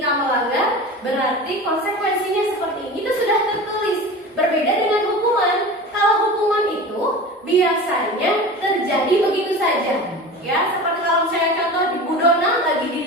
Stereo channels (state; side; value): normal; both; correlation 0.33